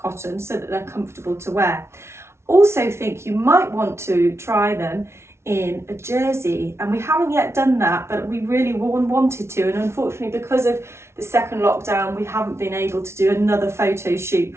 so that they're comfortable to wear. Also think you might want to try them in a jersey, and we haven't yet done that, but we really wanted to, and unfortunately because of the second lockdown we haven't been able to do another photo shoot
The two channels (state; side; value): late; left; 0.13 ms